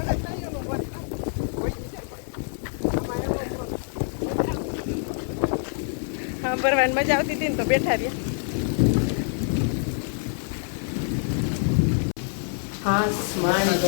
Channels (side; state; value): right; silent; 61 dB below the other